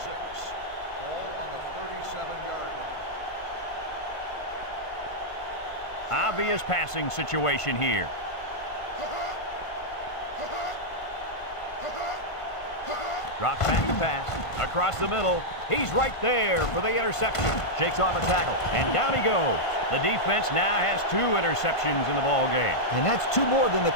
Ball on the 37-yard line. Obvious passing situation here. Drops back to pass. Across the middle. He's right there for the interception. Shakes off a tackle. And down he goes. The defense now has 2 interceptions in the ball game. And that's 2 more than the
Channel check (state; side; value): late; right; 1.5 ms